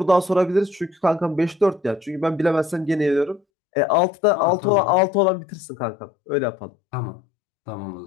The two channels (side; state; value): right; drops out; at 3.4 s